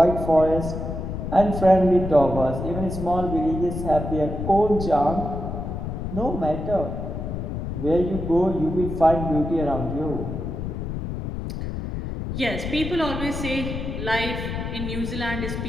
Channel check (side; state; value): left; noise; rumble, 5 dB below the sound